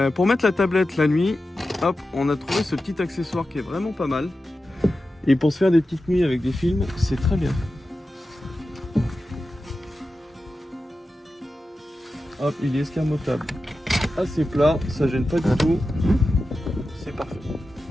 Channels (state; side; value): normal; both; correlation 0.92